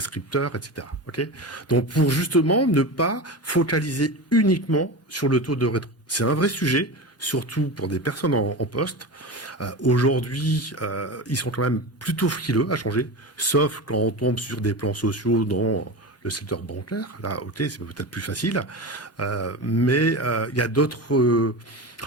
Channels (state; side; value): normal; both; correlation 0.25